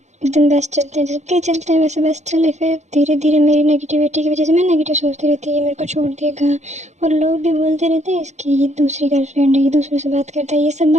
एकदम बेस्ट चलते हैं, जबकि चलते हैं वैसे बेस्ट चले। फिर धीरे धीरे मेरी नेगेटिविटी की वजह से मैं नेगेटिव सोचती रहती है, ये मेरे को छोड़ देगा, और लोग भी बोलते रहते हैं इसकी ये दूसरी गर्लफ्रेंड है, ये दूसरों से बात करता है। ये सब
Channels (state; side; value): late; left; 0.33 ms